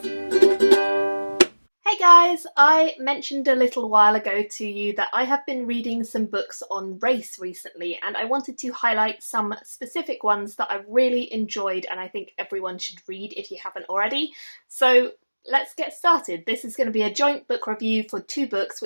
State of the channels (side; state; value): both; inverted; correlation -1.00